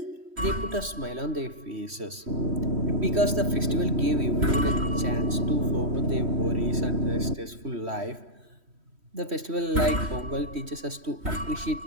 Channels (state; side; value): late; left; 3.1 ms